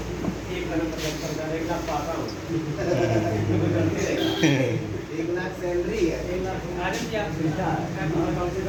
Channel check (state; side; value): identical; both; correlation 1.00